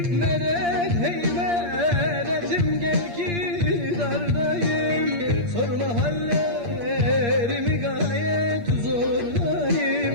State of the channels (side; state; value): left; late; 8.6 ms